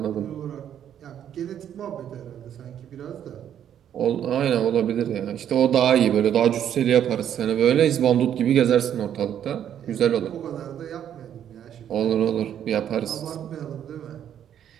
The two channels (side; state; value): left; quieter; 9.8 dB